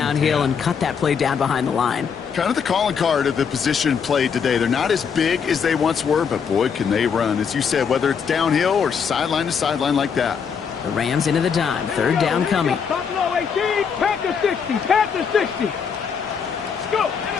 and cut that play down behind the line. Kind of the calling card of the position played today. They're not as big as they once were, but boy, can they run. As you said, whether it's downhill or sideline to sideline like that. The Rams into the dime. 3rd down coming. Buffalo 18, Panther 60, Panther 60. Go.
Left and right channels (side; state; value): right; quieter; 6.6 dB